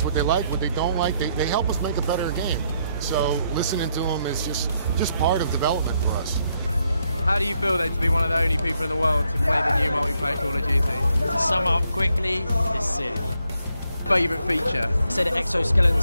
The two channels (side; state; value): both; inverted; correlation -0.76